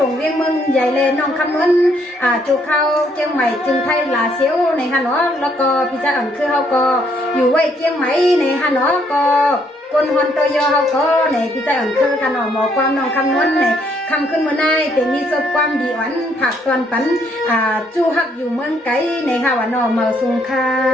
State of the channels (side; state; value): both; normal; correlation 0.70